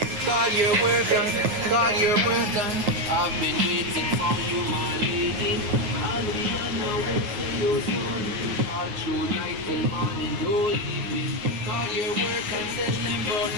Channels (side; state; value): left; late; 9.4 ms